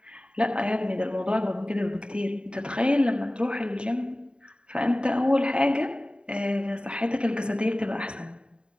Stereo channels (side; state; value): left; late; 0.052 ms